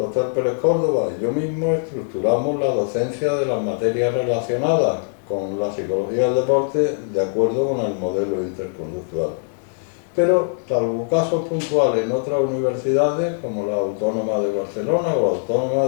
Pérez Córdoba y yo mismo estructuramos la docencia de las materias relacionadas con la psicología del deporte de acuerdo con el modelo interconductual. Pero, salvo casos puntuales en otras universidades, como la Autónoma de Barcelona o la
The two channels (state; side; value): silent; right; digital silence